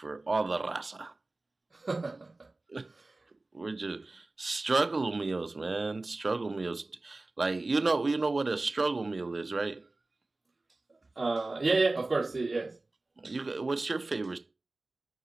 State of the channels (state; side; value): quieter; left; 3.1 dB